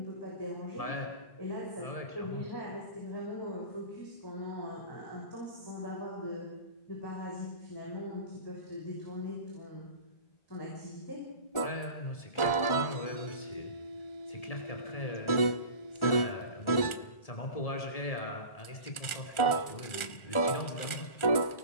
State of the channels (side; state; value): right; late; 1.4 ms